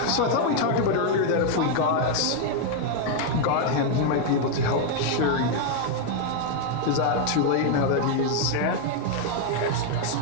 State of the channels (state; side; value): different; both; correlation 0.00